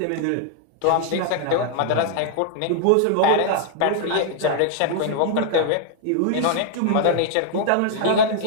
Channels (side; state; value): both; different; correlation 0.00